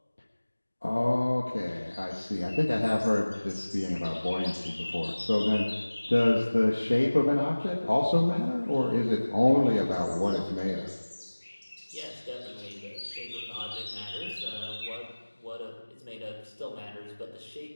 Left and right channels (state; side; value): inverted; both; correlation -1.00